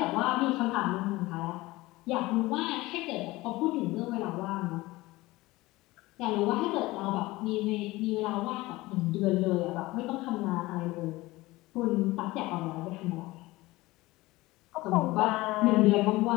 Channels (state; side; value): quieter; right; 19.7 dB